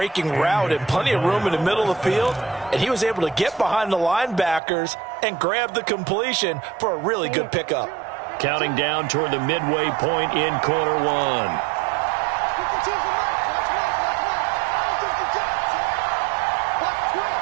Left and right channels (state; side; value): drops out; left; at 4.6 s